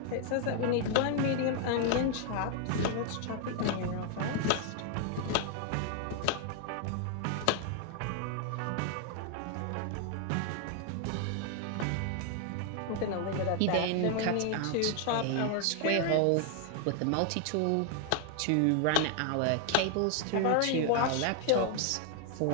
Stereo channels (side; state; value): both; different; correlation 0.00